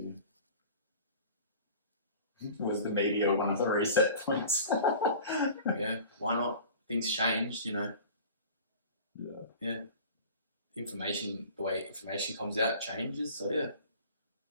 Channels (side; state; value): both; inverted; correlation -0.42